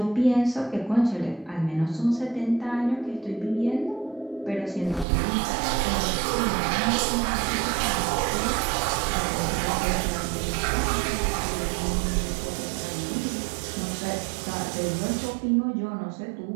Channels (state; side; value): drops out; left; at 5.1 s